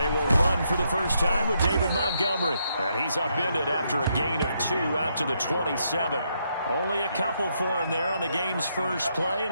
They will run for the first time with David Montgomery. And he's upended after a gain of 2 out to the 27. Only a couple for him there on the game's first play,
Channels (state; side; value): inverted; both; correlation -0.77